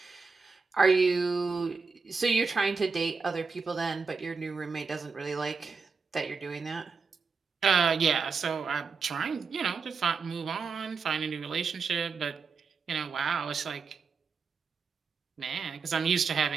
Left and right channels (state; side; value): quieter; left; 4.9 dB